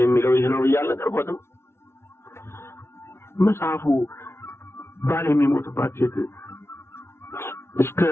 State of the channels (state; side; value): late; right; 0.12 ms